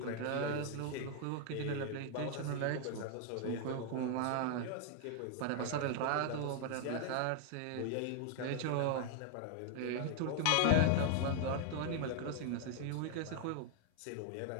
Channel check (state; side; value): different; both; correlation 0.00